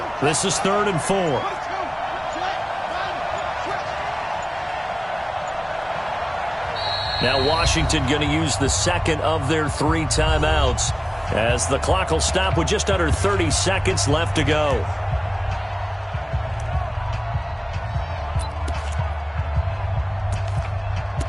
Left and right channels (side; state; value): both; identical; correlation 1.00